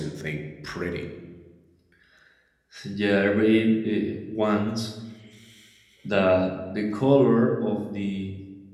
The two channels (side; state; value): both; identical; correlation 1.00